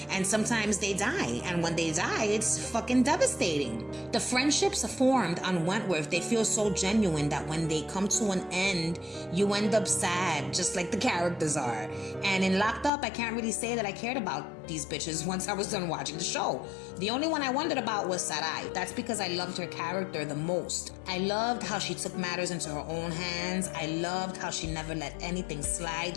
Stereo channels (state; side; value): drops out; right; at 12.9 s